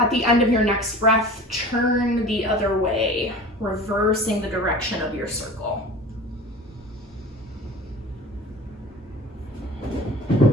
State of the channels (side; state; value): both; normal; correlation 0.39